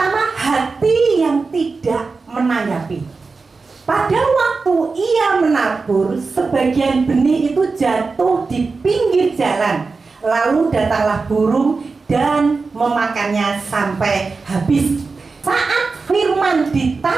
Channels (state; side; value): quieter; left; 4.3 dB